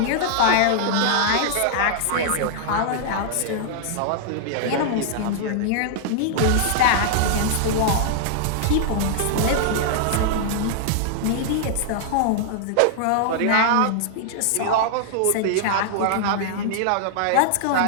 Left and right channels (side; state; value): both; different; correlation -0.01